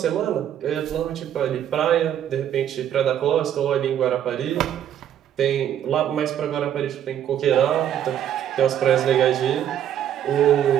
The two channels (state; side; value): quieter; left; 10.3 dB